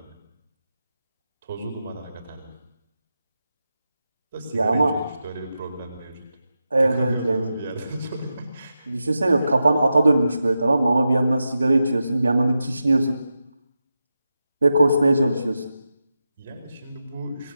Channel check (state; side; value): inverted; both; correlation -0.90